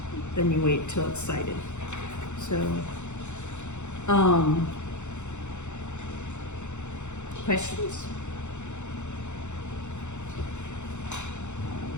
then you wait till it's sighted. So, questions?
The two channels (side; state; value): right; late; 0.83 ms